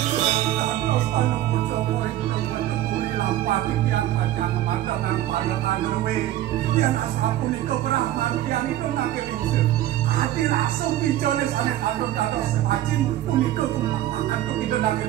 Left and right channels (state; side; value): quieter; left; 13.5 dB